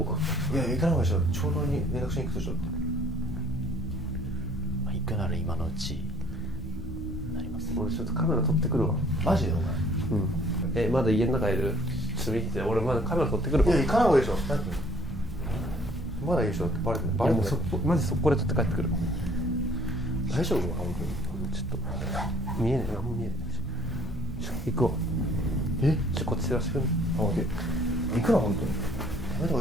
こうか。いや、行かない方がいいでしょ。長老に連絡しに行くでしょって。まあ、行くなら今のうちになります。俺ちょっとカメラ撮ってくるわ。マジでお前。まだ家の中いる？ちょっと見てて、俺まだカメラ撮ってくるわ。いや、行かない方がいいでしょ。まだいいでしょってバレてない。バレてない。マジ速攻で撮って帰ってくる。大丈夫？本当に。ちょっと見えねえ、何も見えねえ。行くわ。こっち照らしてくる。あ、オッケー。行くな、本当に。やめた方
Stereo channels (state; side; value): normal; both; correlation 0.58